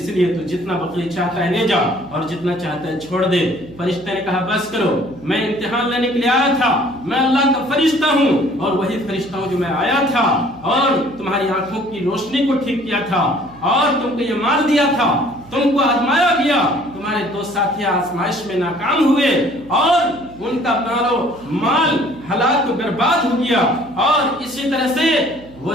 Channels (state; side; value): noise; right; hum, 22 dB below the sound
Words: لیے تو جتنا بقی چاہتا ہے لے جا اور جتنا چاہتا ہے چھوڑ دے۔ فرشتے نے کہا بس کرو، میں امتحان لینے کے لیے آیا تھا، میں اللہ کا فرشتہ ہوں اور وہی فرشتہ ہوں جو میں آیا تھا اور تمہاری آنکھوں کی روشنی کو ٹھیک کیا تھا اور تم کو یہ مال دیا تھا، تم کو آزمایا گیا، تمہارے دو ساتھی آزمائش میں ناکام ہوئے اور ان کا مال ہلاک و برباد ہو گیا اور اسی طرح سے وہ